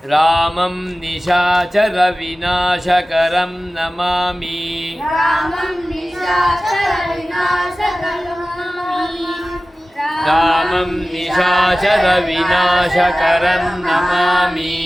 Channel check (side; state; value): both; normal; correlation 0.96